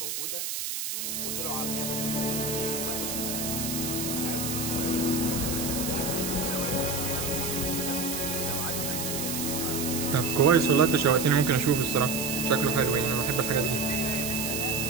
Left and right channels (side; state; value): right; noise; hiss, 3 dB below the sound